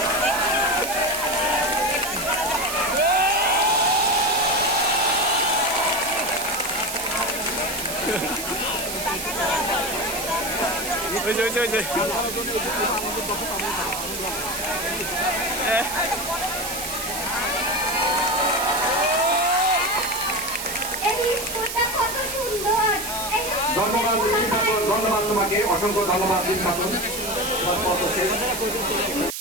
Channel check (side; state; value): right; noise; hiss, 6 dB below the sound